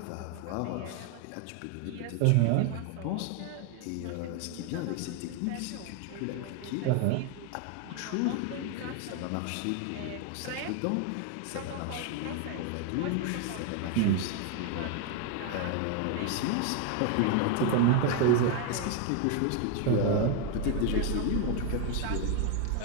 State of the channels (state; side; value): different; both; correlation 0.01